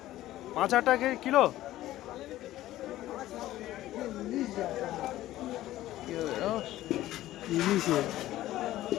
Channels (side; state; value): right; quieter; 14.9 dB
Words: 5,000 টাকা কিলো।